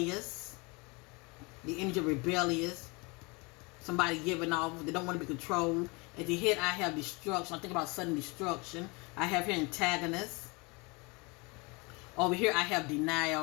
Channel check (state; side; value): quieter; right; 27.9 dB